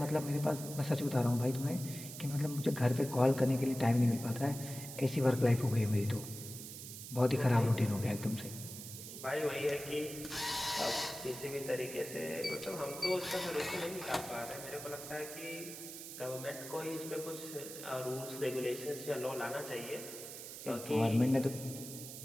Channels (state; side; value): noise; right; hiss, 10 dB below the sound